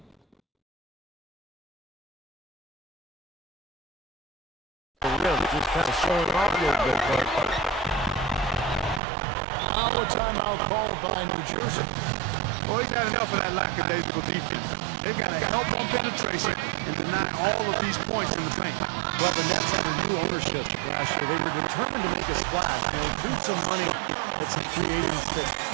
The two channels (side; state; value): left; drops out; at 9.0 s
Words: Just kind of showing off a little bit, but Our timeout called by New Jersey. Boy, he got enough of that lackadaisical defense. They've got to help on penetration and deny all of these points in the paint. well, the Nets had a new ownership last year. They were determined to make a splash. They threw some money at some free agents that